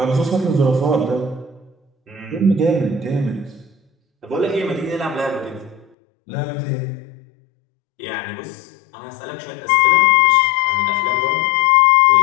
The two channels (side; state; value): right; drops out; at 5.9 s